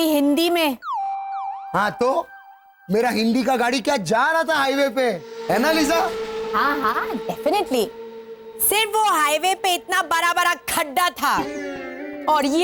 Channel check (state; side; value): identical; both; correlation 1.00